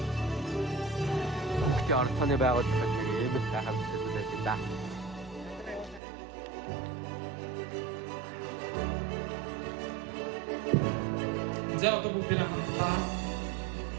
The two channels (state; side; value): drops out; left; at 6.0 s